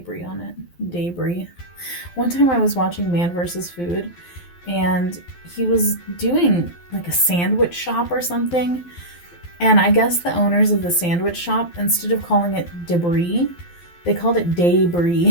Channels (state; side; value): late; right; 12 ms